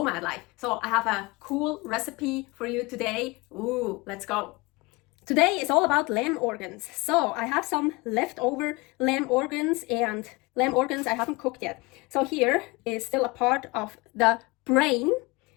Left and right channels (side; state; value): right; quieter; 24.9 dB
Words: life. So I have a cool recipe for you today. Ooh, let's go. Today is all about lamb organs. So I have some leftover lamb organs, and lamb organs I haven't cooked yet. So here is still a part of the brain.